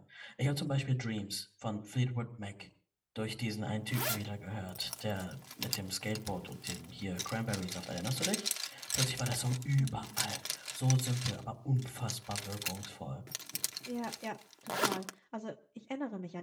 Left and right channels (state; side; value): identical; both; correlation 1.00